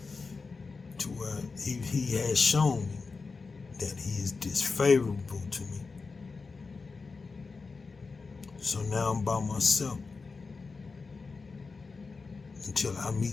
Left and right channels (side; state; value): right; quieter; 4.4 dB